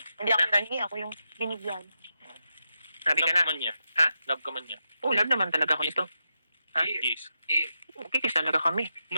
Hindi ako nangi, ako yung binigyan. Sabi ka Love na. ka man niya. Ha? Love ka man niya. Oh, love naman talaga ako nito. Ha? Yes. Okay, kiss talaga kami.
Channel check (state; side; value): inverted; both; correlation -0.87